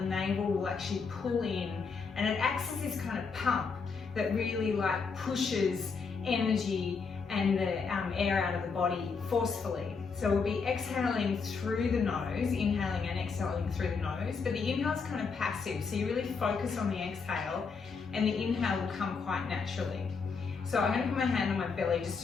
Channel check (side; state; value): right; quieter; 5.2 dB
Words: navel will actually pull in, and it acts as this kind of pump that really pushes energy and the air out of the body forcefully. So we'll be exhaling through the nose, inhaling and exhaling through the nose, but the inhale is kind of passive, so you really focus on the exhale, and the inhale will come quite naturally. So I'm going to put my hand on my belly just